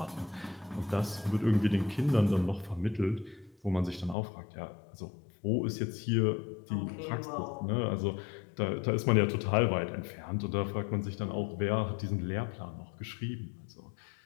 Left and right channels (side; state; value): right; drops out; at 4.2 s